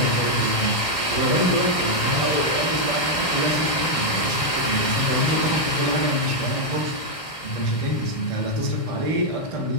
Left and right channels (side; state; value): right; late; 1.6 ms